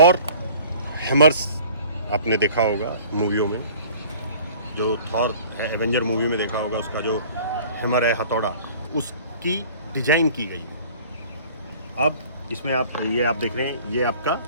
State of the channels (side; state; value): both; inverted; correlation -0.48